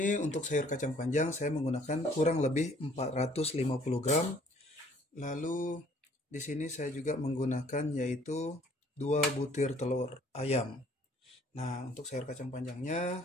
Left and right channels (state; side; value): normal; both; correlation 0.59